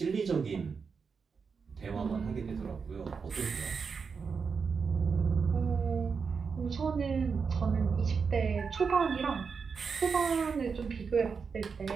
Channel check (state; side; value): quieter; left; 5.5 dB